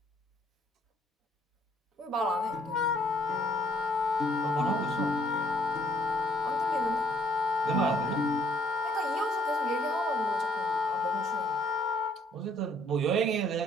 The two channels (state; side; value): normal; both; correlation 0.64